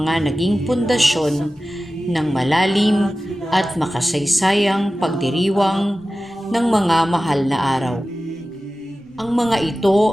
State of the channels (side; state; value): both; normal; correlation 0.95